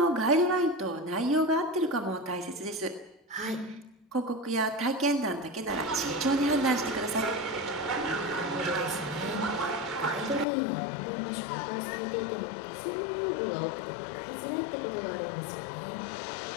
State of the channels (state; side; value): drops out; right; at 10.5 s